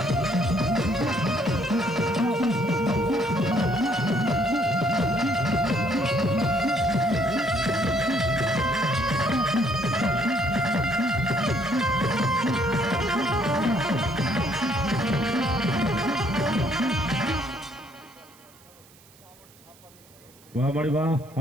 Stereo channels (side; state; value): right; noise; hiss, 26 dB below the sound